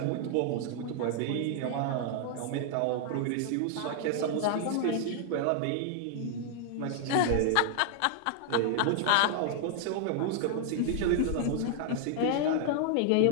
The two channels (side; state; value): both; different; correlation 0.00